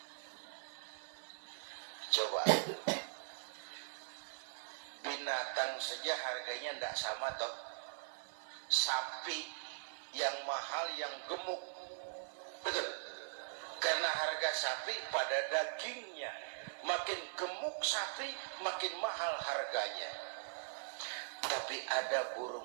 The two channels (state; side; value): silent; left; 50 dB below the other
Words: Coba, binatang saja harganya tidak sama toh. Sapi yang mahal, yang gemuk, betul. Karena harga sapi pada dagingnya. Makin gemuk sapi, makin mahal harganya. Tapi ada